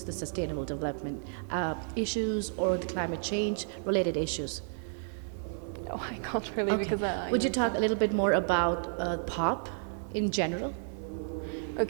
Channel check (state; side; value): silent; left; digital silence